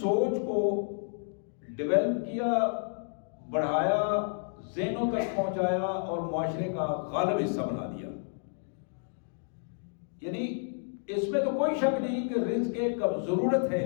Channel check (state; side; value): silent; right; digital silence